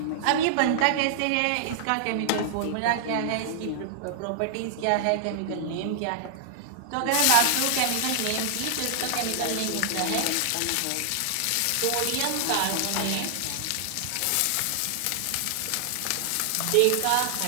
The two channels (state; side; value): different; both; correlation -0.01